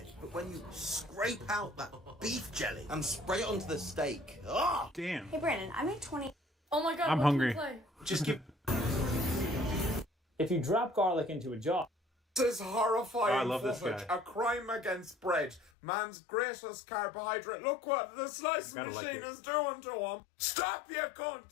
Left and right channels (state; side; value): drops out; right; at 15.7 s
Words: but when you scrape out that beef jelly and spray it onto the steak, ah! Damn. Hey Brandon, I made 20. Oh my god, I'm what hungry. can we play? Just give. If you drop garlic into a jar. This is horrifying Oh, I love this footage. guy. A crime against bread. Man's greatest carbohydrate. Look what the slicing Gotta like machine it. is doing to him. Stop, you cunt!